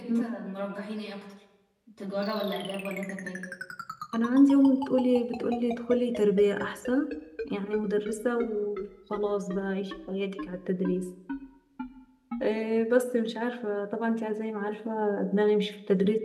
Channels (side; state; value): both; identical; correlation 1.00